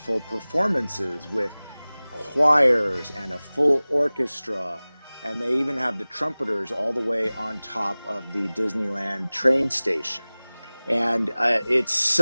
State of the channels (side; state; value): both; inverted; correlation -0.99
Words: performances with choirs and a full orchestra. And they even have the trumpeters all the way on top of the Disneyland train station. And it's